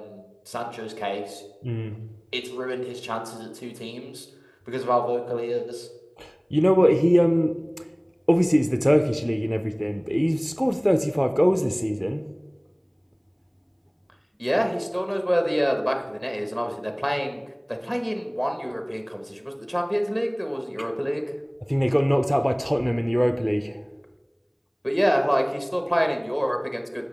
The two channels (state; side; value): identical; both; correlation 1.00